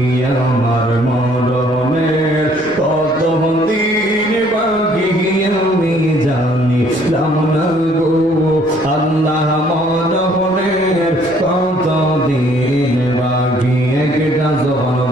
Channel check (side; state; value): right; noise; rumble, 24 dB below the sound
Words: আমার মরণের কত দিন বাকি আমি জানিলাম না গো, আল্লাহ মরণের কত দিন বাকি। একটা জবান